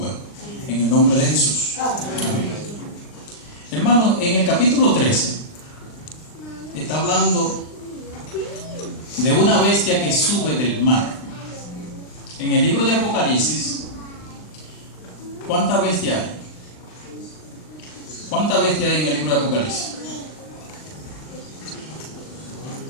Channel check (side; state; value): right; late; 39 ms